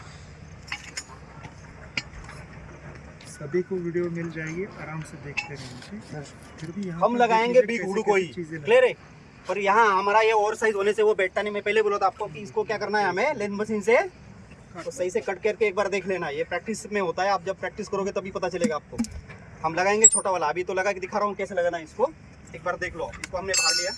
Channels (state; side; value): identical; both; correlation 1.00